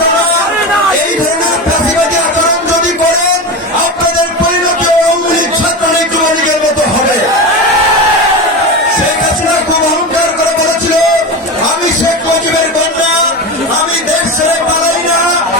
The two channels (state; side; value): normal; both; correlation 0.23